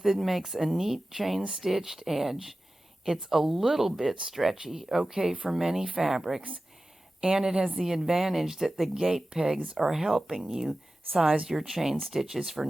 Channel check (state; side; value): normal; both; correlation 0.95